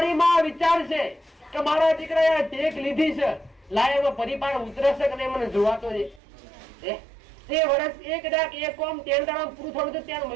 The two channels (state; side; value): drops out; left; at 6.2 s